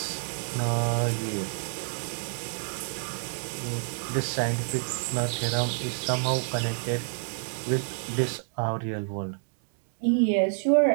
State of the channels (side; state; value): left; silent; digital silence